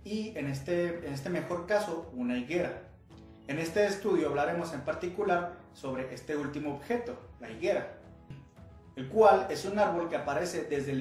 y en este mejor caso una higuera. En este estudio hablaremos en particular sobre este último objeto, la higuera, el cual es un árbol que aparece desde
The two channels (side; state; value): both; identical; correlation 1.00